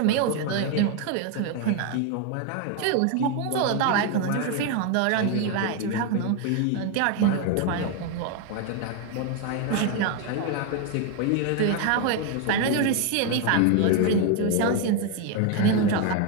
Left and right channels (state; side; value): different; both; correlation 0.01